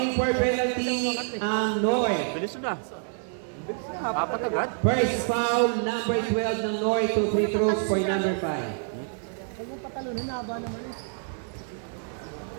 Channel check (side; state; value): left; silent; 60 dB below the other